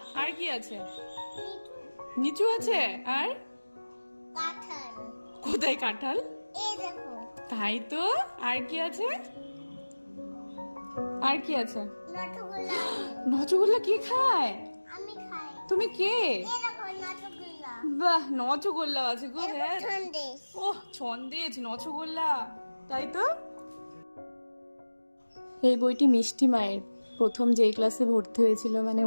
আর কি আছে? নিচু আছে। আর কাঁঠাল। কোথায় কাঁঠাল? এই দেখো তাই তো। আর কি আছে? আর কি আছে? নটগুল্লা। নচগুল্লা কে খায়? আমি খাই। তুমি কে? এই দেখো নটগুল্লা। বাহ, নচগোল্লা আছে গো। হ্যাঁ, সন্দেশ। ওহ ছন্দেজ, নচগোল্লা। তাই তো। এই বইটি মিষ্টি মায়ের প্রথম যেই ক্লাসে ভর্তি হয়েছিল, মানে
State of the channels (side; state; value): both; inverted; correlation -1.00